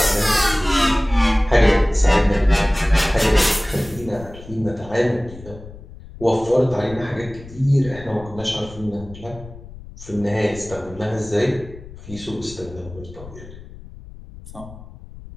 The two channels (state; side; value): noise; left; rumble, 17 dB below the sound